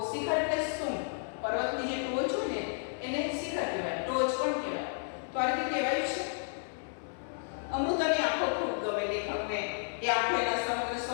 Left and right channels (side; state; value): right; silent; digital silence